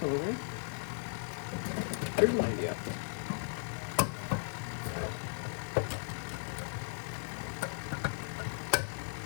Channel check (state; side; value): silent; right; digital silence